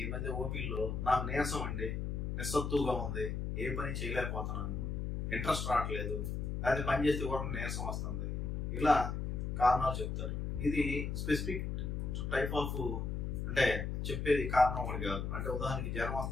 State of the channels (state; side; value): noise; left; hum, 2 dB below the sound